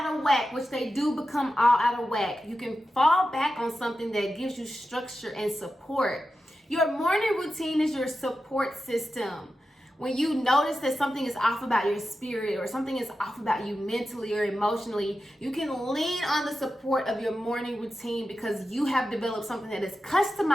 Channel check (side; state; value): both; normal; correlation 0.91